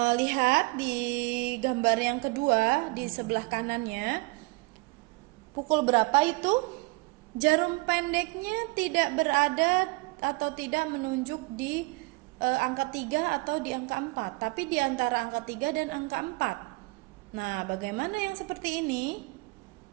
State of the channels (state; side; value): quieter; left; 25.7 dB